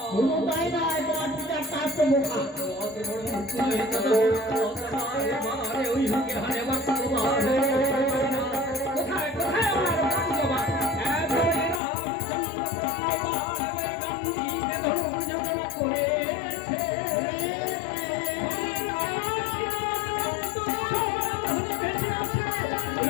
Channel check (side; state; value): right; drops out; at 11.8 s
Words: কোনো তাই না, তোমার পিতার তার তো বোকা। ওই হুকে হারে বাক্য কোথায় কোথায় আমার বাবা